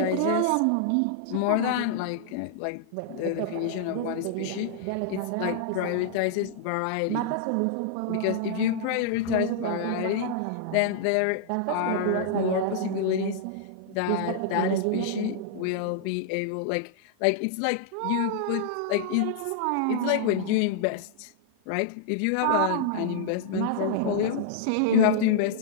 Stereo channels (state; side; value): different; both; correlation -0.01